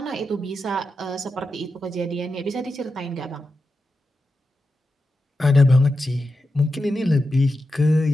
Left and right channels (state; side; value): normal; both; correlation 0.89